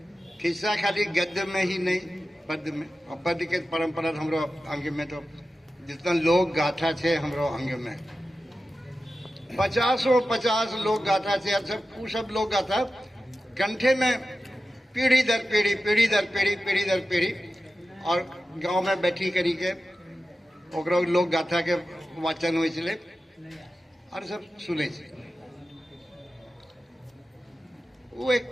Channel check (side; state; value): both; normal; correlation 0.93